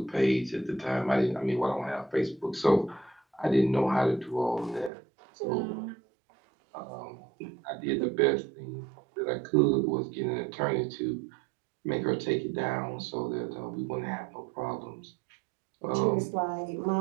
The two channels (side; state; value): left; drops out; at 4.9 s